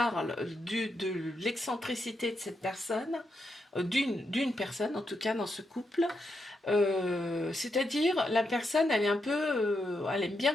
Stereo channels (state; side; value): normal; both; correlation 0.83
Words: de l'excentricité de cette personne, d'une personne en tout cas dans ce couple. C'est-à-dire, la personne, elle est un peu, elle aime bien